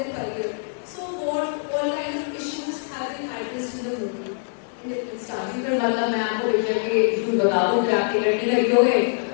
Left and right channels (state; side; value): silent; right; 63 dB below the other